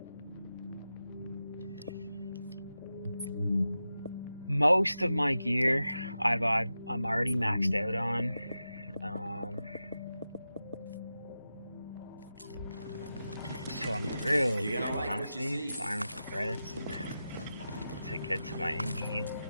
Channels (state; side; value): inverted; both; correlation -0.91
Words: Most of my gear I'm already maxed out on. So I'm really honestly farming for credits to get to my end game.